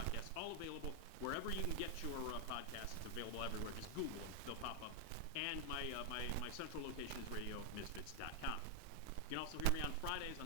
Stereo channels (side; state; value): both; different; correlation 0.00